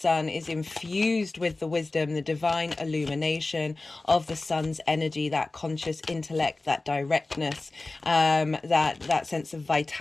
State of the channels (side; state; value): right; quieter; 3.2 dB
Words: is infused with the wisdom, the divine illumination of the Sun's energy, that conscious intellect, that directness, that sense of